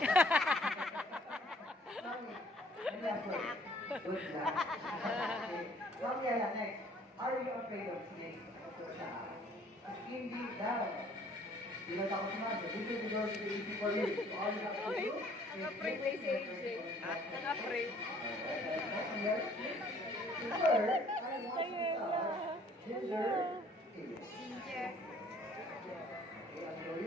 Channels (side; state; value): both; normal; correlation 0.58